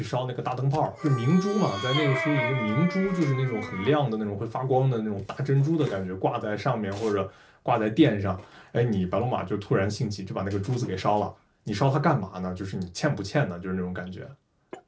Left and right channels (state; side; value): identical; both; correlation 1.00